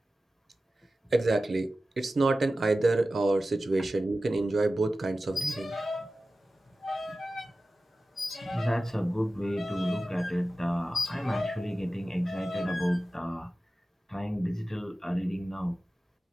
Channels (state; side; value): normal; both; correlation 0.95